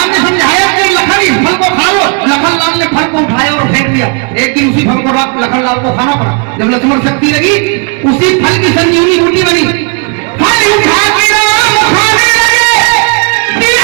ने समझाया कि लखन इस फल को खा लो। लखन लाल ने फल को उठाया और फेंक दिया। एक दिन उसी फल को लखन लाल को खाना पड़ा। जब लक्ष्मण शक्ति लगी उसी फल की संजीवनी बूटी बनी। फल उठा के राम खाने लगे,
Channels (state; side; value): quieter; left; 35.6 dB